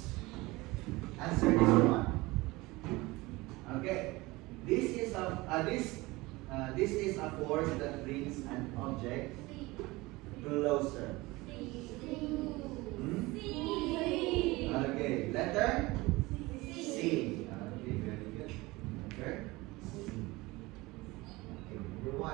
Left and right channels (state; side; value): quieter; left; 21.6 dB